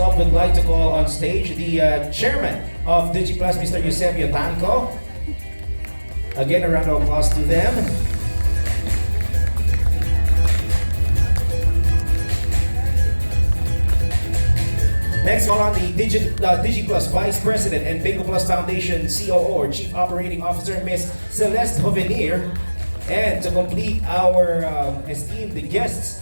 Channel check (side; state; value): both; inverted; correlation -1.00